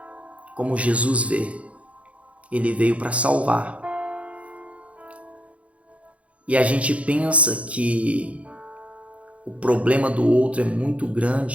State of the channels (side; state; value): left; late; 0.064 ms